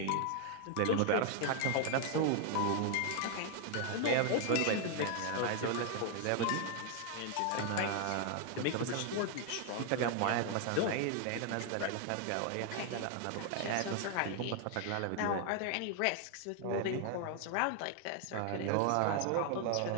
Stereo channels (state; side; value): different; both; correlation 0.00